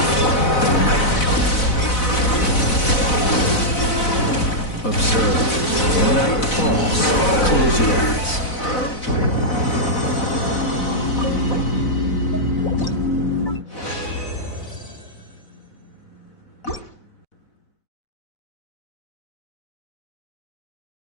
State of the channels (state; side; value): late; right; 4.0 ms